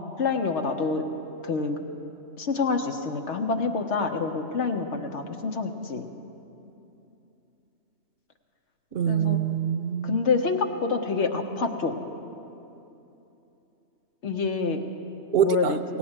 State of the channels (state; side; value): late; right; 2.8 ms